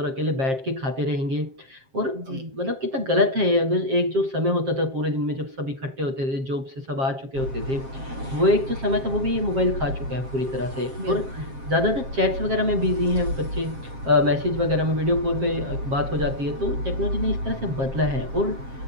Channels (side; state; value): left; late; 7.5 ms